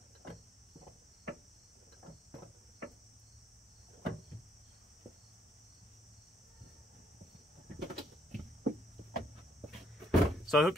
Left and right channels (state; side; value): normal; both; correlation 0.70